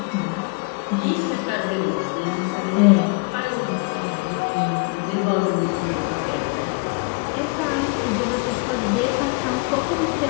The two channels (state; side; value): quieter; right; 32.0 dB